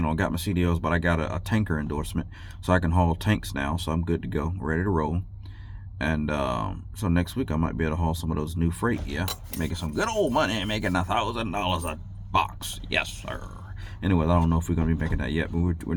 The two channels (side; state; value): both; identical; correlation 1.00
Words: but I got a tanker endorsement, so I can haul tanks now. So I'm good to go, ready to roll. And so next week I might be able to haul some of those new freight. Yeah, making some good old money, making $1,000 a box. Yes, sir. Anyway, I don't know if we're gonna be making that yet, but we're